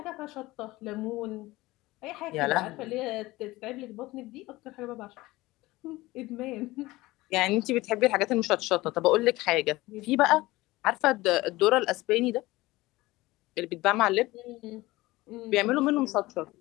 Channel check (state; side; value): quieter; right; 19.4 dB